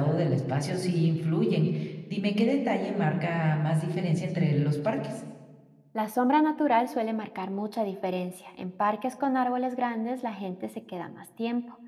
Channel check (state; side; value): identical; both; correlation 1.00